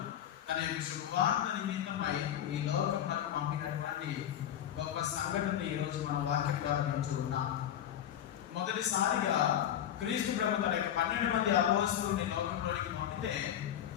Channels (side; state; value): right; quieter; 10.6 dB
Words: తన యొక్క శుభవార్త నిమిత్తమై ఈ లోకంలో పంపినటువంటి గొప్ప సంఘటన ఈరోజు మన వాక్యం ద్వారా వింటూ ఉన్నాం. మొదటిసారిగా క్రీస్తు ప్రభు తన యొక్క 12 మంది అపోస్తలుని లోకంలోనికి పంపితే